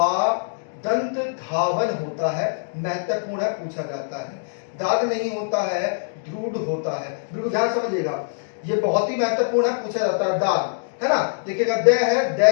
दंत धावन होता है, महत्वपूर्ण है, पूछा जाता है। दाद नहीं होता है, द्रूढ़ होता है। बिल्कुल ध्यान समझिएगा, ये बहुत ही महत्वपूर्ण है, पूछा जाता है। दाद, है ना, देखिएगा, द है, द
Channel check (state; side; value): silent; right; digital silence